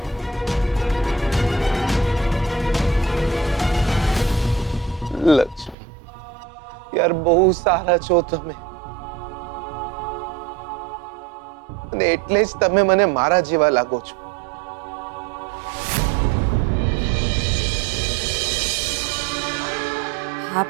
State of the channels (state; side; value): drops out; left; at 5.8 s